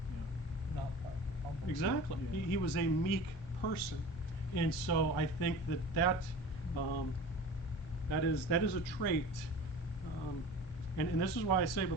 yeah. Not prideful, humble. Exactly. Yeah. He was a meek person, and so I think that is a trait, and this is why I say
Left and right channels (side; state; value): right; late; 1.4 ms